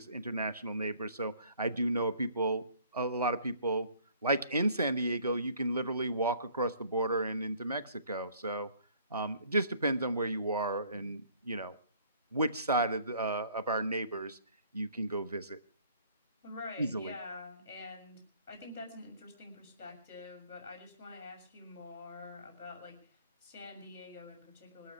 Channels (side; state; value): both; inverted; correlation -0.57